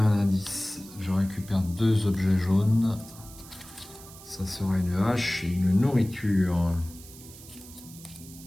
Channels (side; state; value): right; noise; hiss, 18 dB below the sound